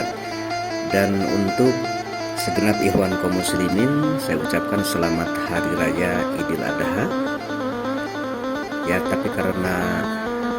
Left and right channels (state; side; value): identical; both; correlation 1.00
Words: Dan untuk segenap ikhwan kaum muslimin, saya ucapkan selamat hari raya Idul Adha. Ya, tapi karena